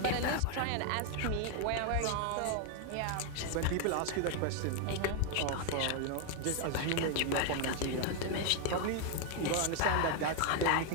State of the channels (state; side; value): different; both; correlation 0.01